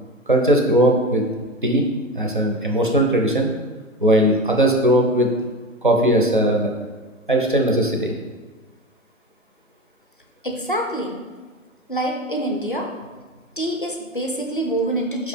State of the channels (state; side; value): normal; both; correlation 0.26